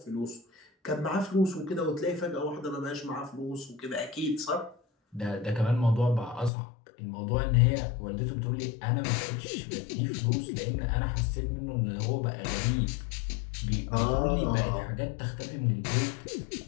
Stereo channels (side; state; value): right; drops out; at 6.5 s